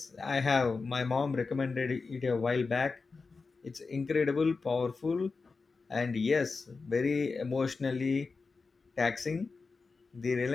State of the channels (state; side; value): quieter; right; 4.4 dB